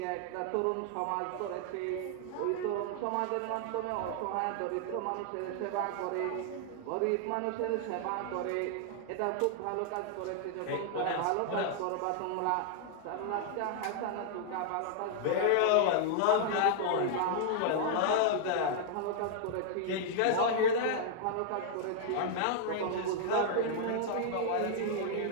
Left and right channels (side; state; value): both; different; correlation -0.01